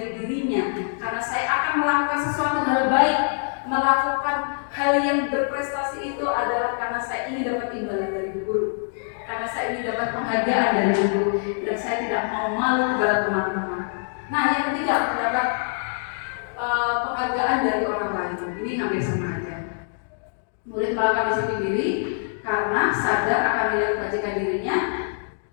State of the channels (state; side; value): silent; right; digital silence